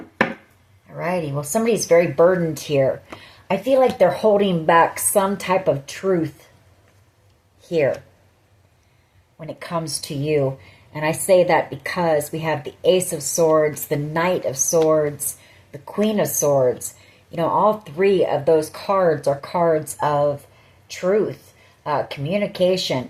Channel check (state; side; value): identical; both; correlation 1.00